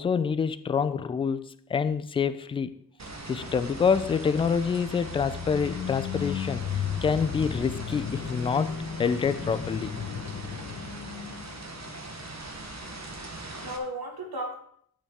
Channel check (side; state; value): right; quieter; 5.5 dB